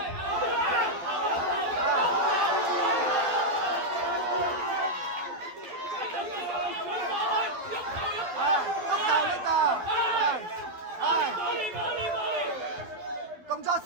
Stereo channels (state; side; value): late; left; 12 ms